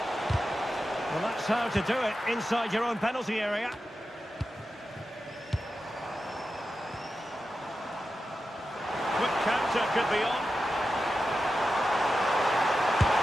Well, that's how to do it inside your own penalty area. Quick counter could be on.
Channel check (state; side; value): normal; both; correlation 0.91